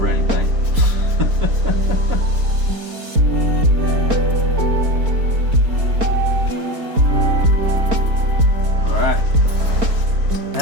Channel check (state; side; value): late; left; 4.3 ms